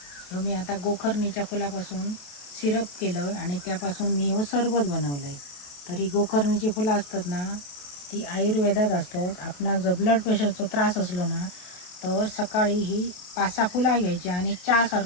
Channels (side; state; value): right; late; 28 ms